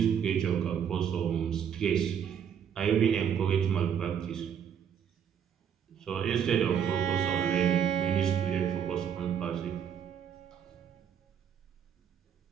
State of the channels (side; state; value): left; quieter; 8.3 dB